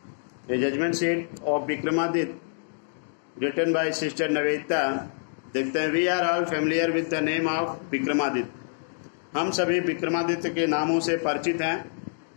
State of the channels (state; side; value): silent; right; digital silence